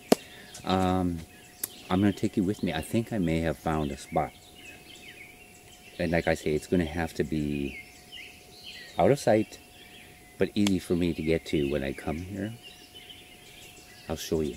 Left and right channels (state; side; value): identical; both; correlation 1.00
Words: I'm gonna take you with me. I think I may have found a spot. And like I say, it's gonna have to be out of sight, but easy for me to get to when I come here. I'll show you.